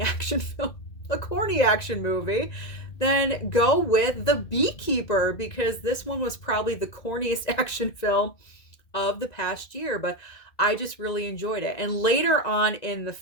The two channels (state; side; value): late; right; 1.9 ms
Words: action film, a corny action movie, then go with The Beekeeper, because this one was probably the corniest action film of the past year, but I just really enjoyed it. And later on in the